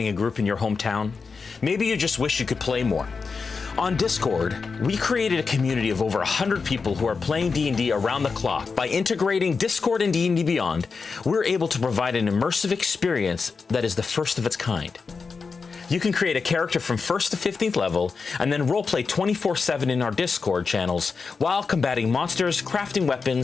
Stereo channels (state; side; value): quieter; right; 4.9 dB